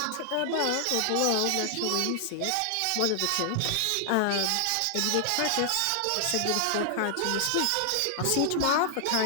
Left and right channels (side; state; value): both; different; correlation 0.00